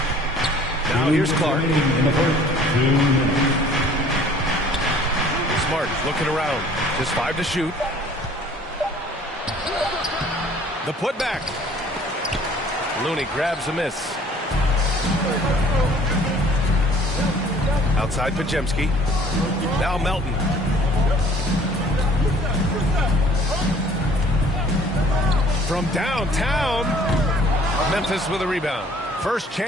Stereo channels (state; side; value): normal; both; correlation 0.54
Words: Now here's Clark. Smart looking around. Just 5 to shoot. The putback. Looney grabs a miss. Outside Pajemski. Now Melton. From downtown. Memphis with a rebound. First